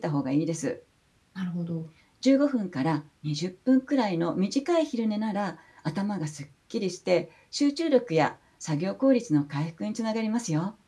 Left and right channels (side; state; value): both; identical; correlation 1.00